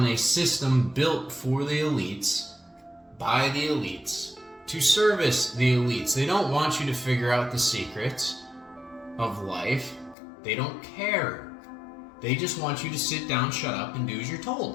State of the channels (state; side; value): drops out; right; at 10.2 s